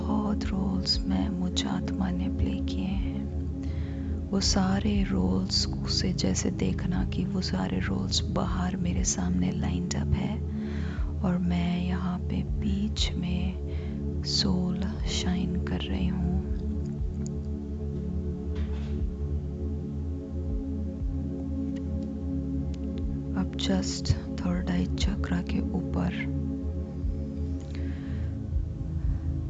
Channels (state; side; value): identical; both; correlation 1.00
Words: रोल्स में मुझ आत्मा ने प्ले किए हैं। वो सारे रोल्स से जैसे देखना कि वो सारे रोल्स बाहर मेरे सामने लाइंड अप है और मैं यहाँ पे बीच में सोल शाइन कर रही हूँ। अब जस्ट थर्ड आई चक्रा के ऊपर,